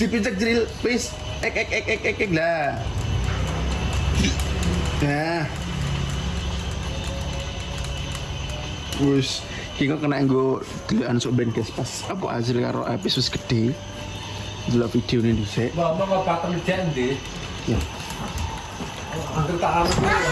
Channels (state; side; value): identical; both; correlation 1.00